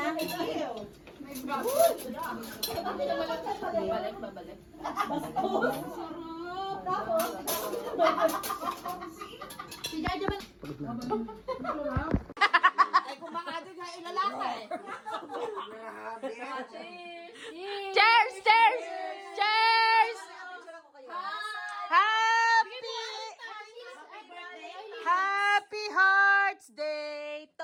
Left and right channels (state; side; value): identical; both; correlation 1.00